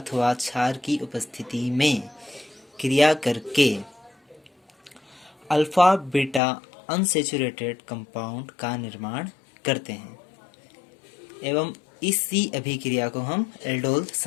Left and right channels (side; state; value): right; drops out; at 6.4 s